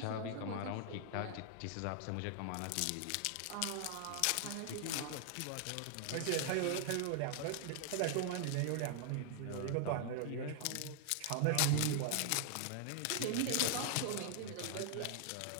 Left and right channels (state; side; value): different; both; correlation 0.00